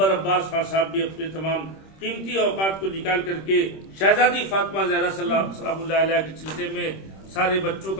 عباس خان صاحب بھی اپنے تمام قیمتی اوقات کو نکال کر کے شہزادی فاطمہ زہرا سلام اللہ علیہ کے سلسلے میں سارے بچوں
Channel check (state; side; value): late; right; 26 ms